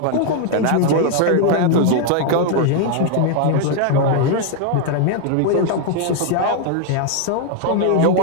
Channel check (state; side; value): different; both; correlation 0.00